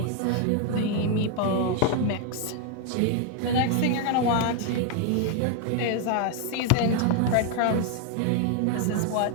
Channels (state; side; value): different; both; correlation 0.00